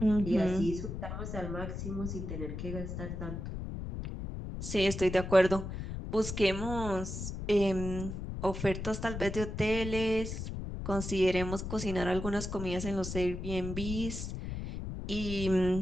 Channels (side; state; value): left; noise; rumble, 6 dB below the sound